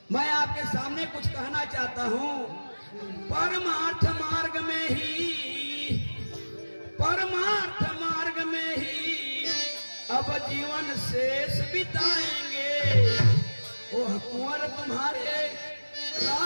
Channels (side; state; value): both; inverted; correlation -1.00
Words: मैं आपके सामने कुछ कहना चाहता हूँ। परमार्थ मार्ग में ही, परमार्थ मार्ग में ही अब जीवन शेष बिताएंगे। ओह कुंवर तुम्हारे